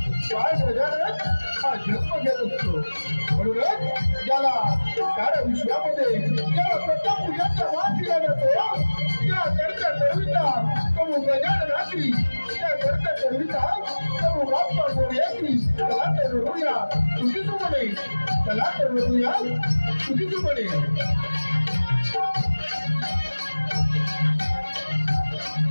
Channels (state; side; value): inverted; both; correlation -1.00